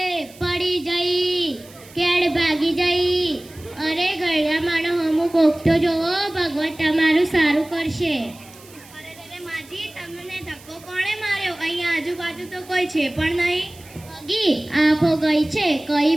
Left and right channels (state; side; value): noise; right; hiss, 22 dB below the sound